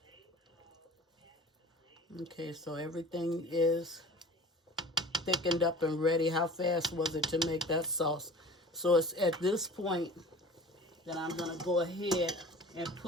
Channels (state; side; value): normal; both; correlation 0.43